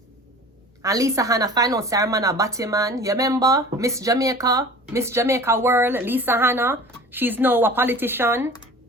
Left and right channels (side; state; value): both; normal; correlation 0.42